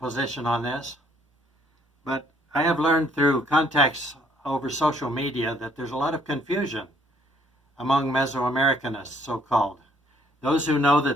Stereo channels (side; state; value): both; normal; correlation 0.64